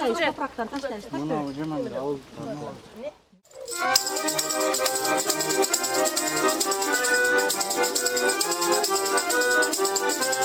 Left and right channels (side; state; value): both; identical; correlation 1.00